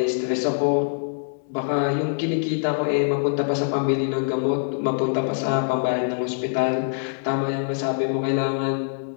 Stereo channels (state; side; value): silent; right; digital silence